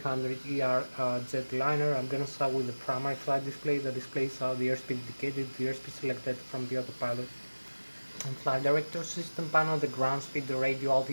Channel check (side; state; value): both; inverted; correlation -1.00